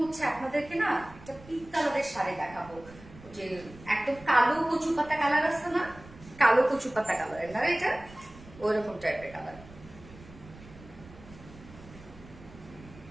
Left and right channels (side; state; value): right; noise; rumble, 19 dB below the sound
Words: হচ্ছে আপনাদেরকে না একটা পিঙ্ক কালারের শাড়ি দেখাবো, যে একদম কালো কচু পাতা কালার আছে না, কালো কচু পাতা কালারের না, এটা ওইরকম টাইপের কালার।